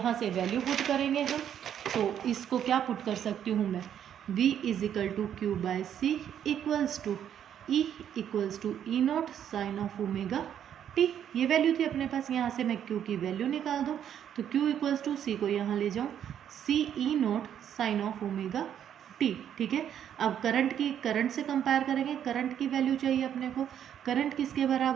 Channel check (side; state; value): left; quieter; 9.5 dB